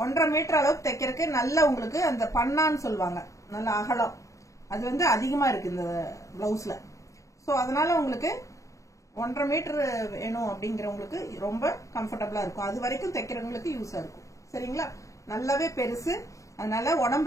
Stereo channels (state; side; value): late; right; 0.15 ms